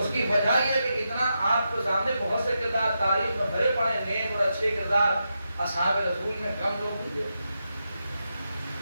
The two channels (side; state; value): both; inverted; correlation -0.86